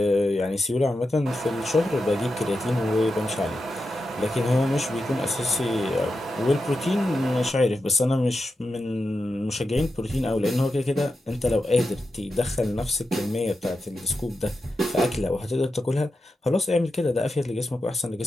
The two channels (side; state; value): both; normal; correlation 0.89